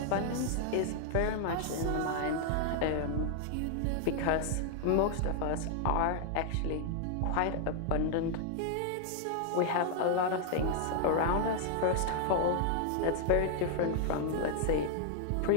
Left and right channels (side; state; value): both; different; correlation 0.00